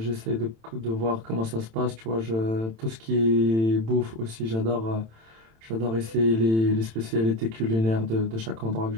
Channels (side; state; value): left; late; 27 ms